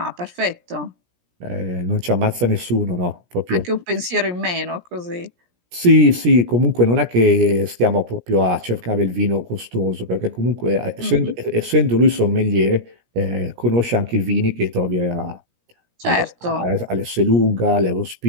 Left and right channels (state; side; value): late; left; 17 ms